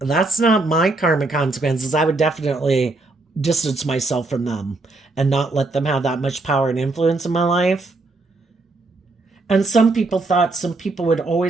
that's not my karmic consequences. I would definitely distance myself from them and not let them have that much power and influence in my life. And some people thought some people would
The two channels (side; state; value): left; quieter; 3.2 dB